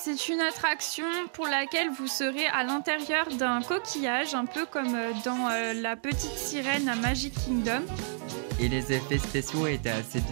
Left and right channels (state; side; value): silent; left; digital silence